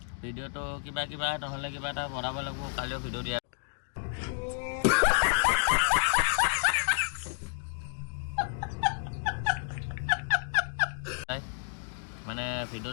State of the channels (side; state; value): right; silent; 57 dB below the other